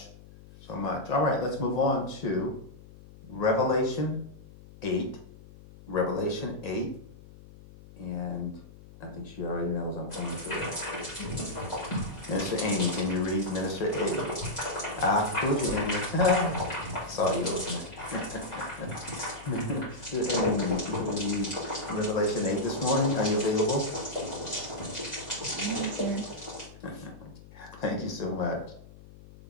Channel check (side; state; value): left; noise; hum, 19 dB below the sound